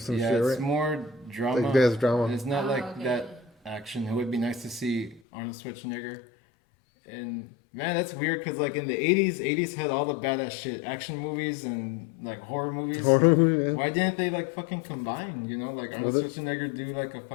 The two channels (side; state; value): right; drops out; at 5.2 s